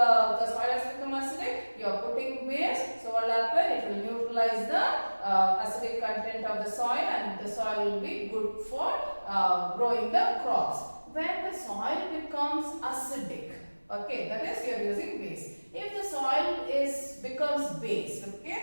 soil has become acidic. You are putting base. So what will happen? It will neutralize the acidic content of the soil, and the soil will be good for growing the crops. When the soil becomes acidic, okay, that is you are using base. If the soil becomes base,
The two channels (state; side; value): inverted; both; correlation -1.00